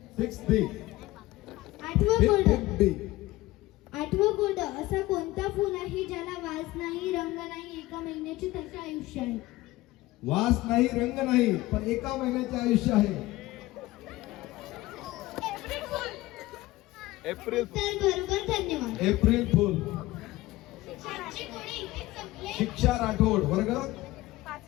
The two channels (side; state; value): right; quieter; 18.2 dB